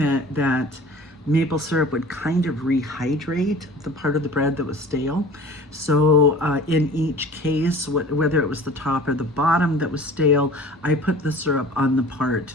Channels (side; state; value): both; normal; correlation 0.43